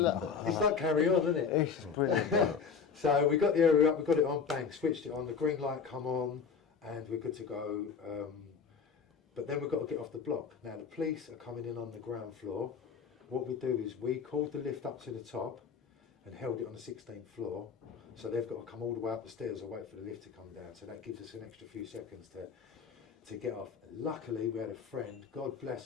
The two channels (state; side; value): quieter; right; 6.1 dB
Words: it's like Carry On, isn't it? It's brilliant. So we got the area up, we got it on, bang, switched it on, the green light come on, and we're good to go. But then we've got to get off the block. Now the police are coming in on the ground floor. What we do is we called the lift up to the top and held it on the 16th floor. So they've got to come all the way up the stairs or wait for the lift to come down. So that gives us an extra few seconds to get off. Luckily we had a friend, God